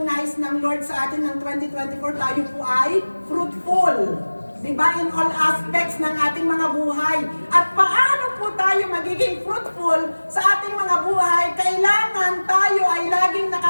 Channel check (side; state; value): both; inverted; correlation -1.00